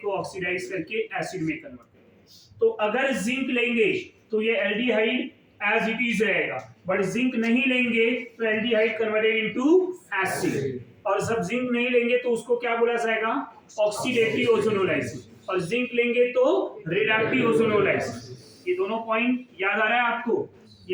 को ऑक्सीडाइज करके एसिड में कन्वर्ट करेगा। तो अगर जिंक लेंगे तो ये एल्डिहाइड एज इट इज रहेगा, बट जिंक नहीं लेंगे तो एल्डिहाइड कन्वर्टेड इनटू एसिड, और जब जिंक नहीं लेंगे तो उसको क्या बोला जाएगा? ऑक्सीडेटिव ओजोनोलाइसिस, और जिंक लेंगे तो रिडक्टिव ओजोनोलाइसिस। ये दोनों पॉइंट याद आ रहा है आपको?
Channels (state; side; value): identical; both; correlation 1.00